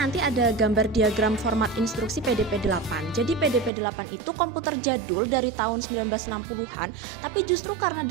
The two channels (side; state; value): left; drops out; at 3.7 s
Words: ada gambar diagram format instruksi PDP-8. Jadi PDP-8 itu komputer jadul dari tahun 1960-an, tapi justru karena